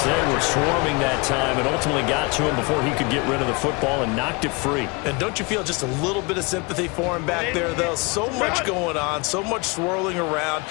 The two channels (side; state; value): right; quieter; 28.2 dB